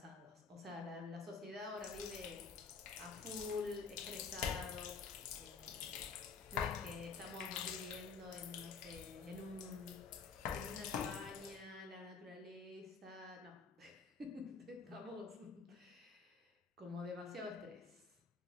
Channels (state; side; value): quieter; right; 5.3 dB